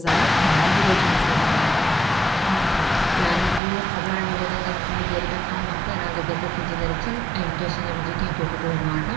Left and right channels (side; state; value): left; drops out; at 3.6 s